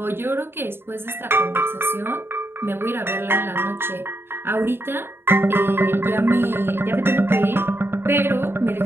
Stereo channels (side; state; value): left; late; 0.11 ms